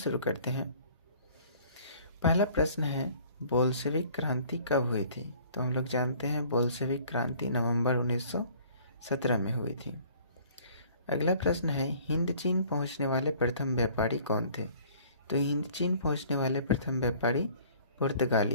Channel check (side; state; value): both; inverted; correlation -0.53